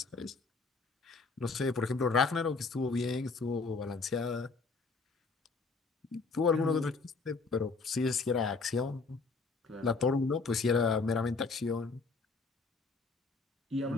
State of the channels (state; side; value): quieter; right; 4.2 dB